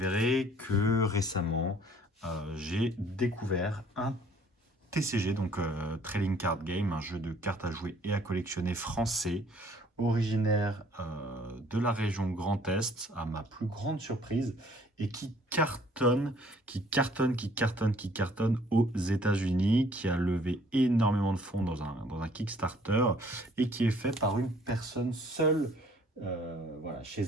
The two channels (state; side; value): normal; both; correlation 0.58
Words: que récemment, j'ai découvert un TCG, donc Trading Card Game, un jeu de cartes à jouer et à collectionner français, originaire de la région Grand Est, à ma plus grande surprise, et qui cartonne aux États-Unis, qui a levé énormément de fonds dans un Kickstarter, et qui est fait par une personne seule, voilà, chez